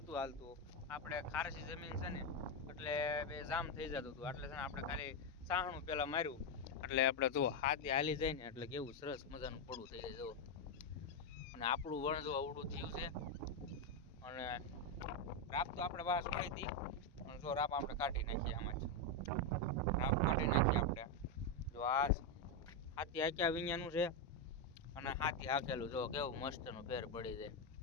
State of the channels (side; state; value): both; normal; correlation 0.06